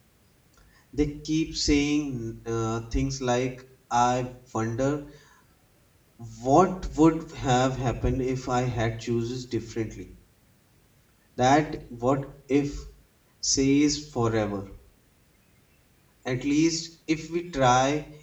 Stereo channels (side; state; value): both; identical; correlation 1.00